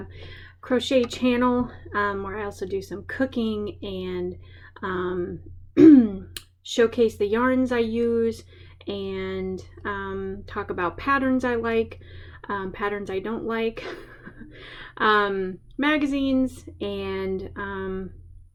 crochet channel where I also do some cooking and showcase the yarns I use and talk about patterns I like, patterns I don't like, magazines, and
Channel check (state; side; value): identical; both; correlation 1.00